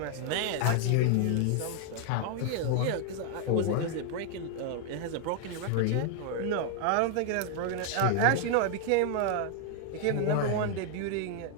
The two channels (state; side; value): different; both; correlation 0.00